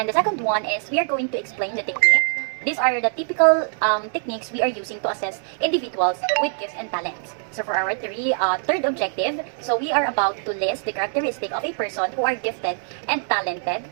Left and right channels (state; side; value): silent; left; digital silence